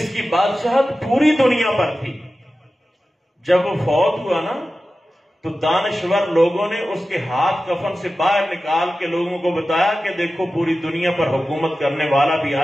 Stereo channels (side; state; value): both; normal; correlation 0.94